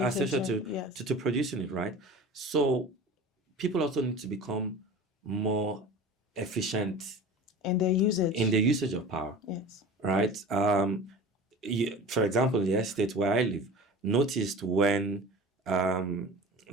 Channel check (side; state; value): both; normal; correlation 0.37